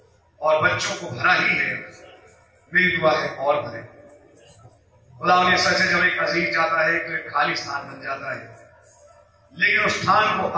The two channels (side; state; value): both; identical; correlation 1.00